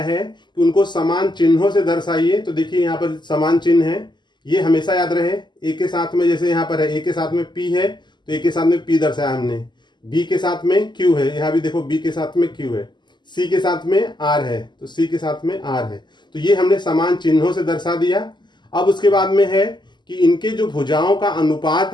है कि उनको समान चिन्हों से दर्शाइए। तो देखिए, यहाँ पर समान चिन्ह है, ये हमेशा याद रहे। ए के साथ में, जैसे यहाँ पर है ए के साथ में पी है, तो ए के साथ में पी दर्शाया हमने। बी के साथ में क्यू है, यहाँ भी देखो बी के साथ में क्यू है। सी के साथ में आर है, तो सी के साथ में आर है। तो ये हमने समान चिन्हों से दर्शा दिया। अब उसके बाद में है कि इनके जो भुजाओं का अनुपात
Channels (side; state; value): right; late; 0.21 ms